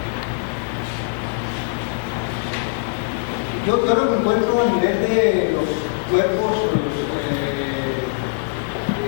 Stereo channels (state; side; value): silent; right; digital silence